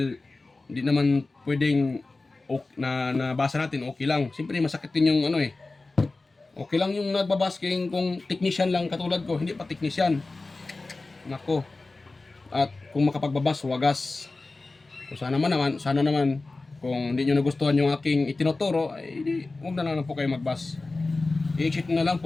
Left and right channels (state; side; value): quieter; right; 3.4 dB